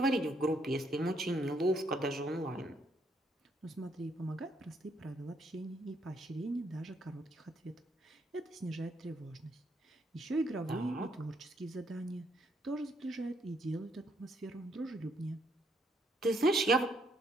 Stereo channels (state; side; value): normal; both; correlation 0.72